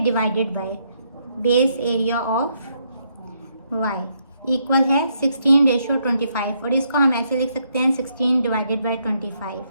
divided by base area of Y equal है 16:25, और इसको हम ऐसे लिख सकते हैं 16 divided by 25।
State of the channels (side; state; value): both; inverted; correlation -0.75